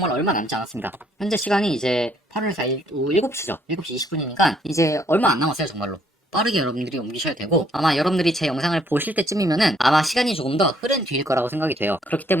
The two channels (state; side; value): normal; both; correlation 0.67